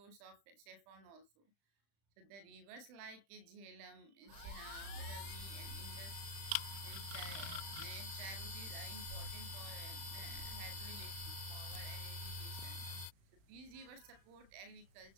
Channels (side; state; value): left; late; 35 ms